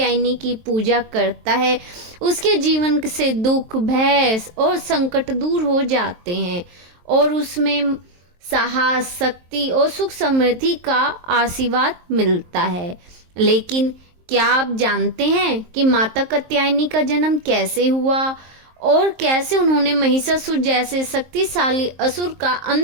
की पूजा करता है, उसके जीवन से दुख, भय और संकट दूर हो जाते हैं और उसमें साहस, शक्ति और सुख समृद्धि का आशीर्वाद मिलता है। लेकिन क्या आप जानते हैं कि माता कात्यायनी का जन्म कैसे हुआ और कैसे उन्होंने महिषासुर जैसे शक्तिशाली असुर का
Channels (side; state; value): left; late; 23 ms